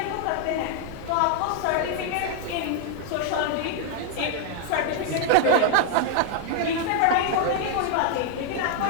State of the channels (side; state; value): both; different; correlation 0.00